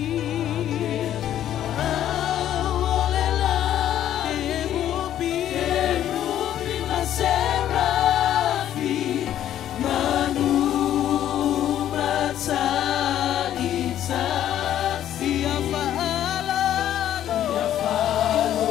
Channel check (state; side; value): quieter; right; 11.4 dB